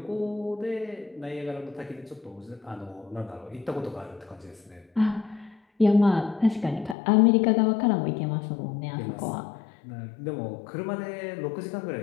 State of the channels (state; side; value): drops out; right; at 7.0 s